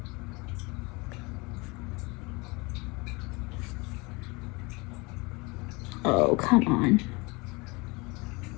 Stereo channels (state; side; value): quieter; right; 26.3 dB